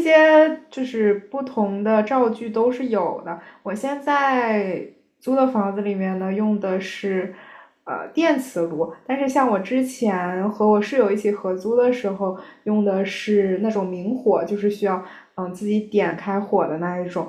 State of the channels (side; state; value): both; identical; correlation 1.00